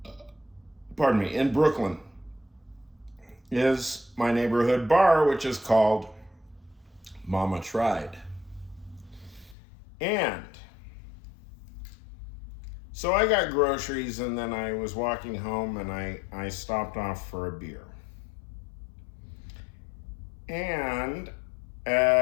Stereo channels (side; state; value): right; drops out; at 9.6 s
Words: in Brooklyn, is my neighborhood bar, which is called Mama Tried. And so I got groceries, and then I was walking home, and I stopped off for a beer. And